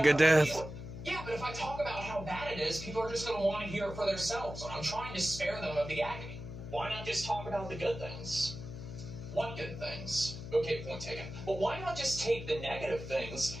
Yeah, but if I talk about how bad it is, people are just going to want to hear it for themselves, and I'm trying to spare them of the agony. Why not just talk about the good things? What good things? Okay, point taken. But why not just take the negative things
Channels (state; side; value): noise; left; hum, 10 dB below the sound